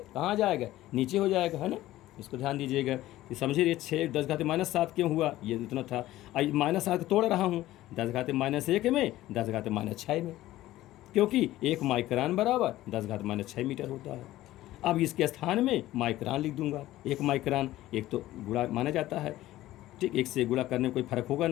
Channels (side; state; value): right; quieter; 15.5 dB